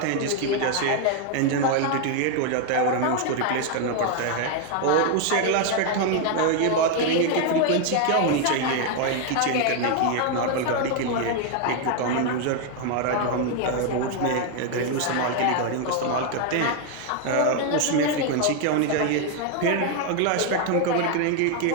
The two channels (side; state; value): both; different; correlation 0.01